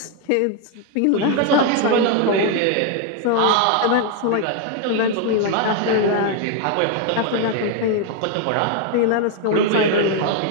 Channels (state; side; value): different; both; correlation 0.01